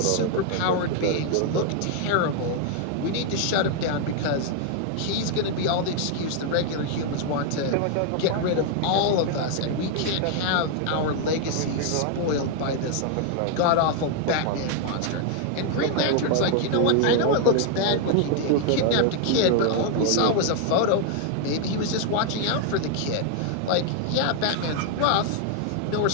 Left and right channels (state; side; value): different; both; correlation 0.00